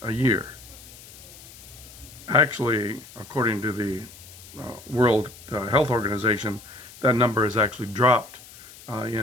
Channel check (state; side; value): noise; left; hiss, 19 dB below the sound